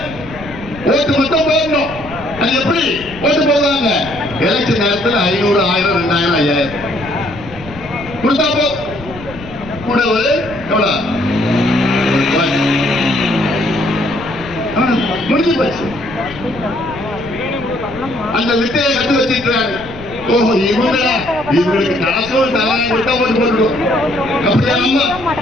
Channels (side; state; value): left; noise; rumble, 16 dB below the sound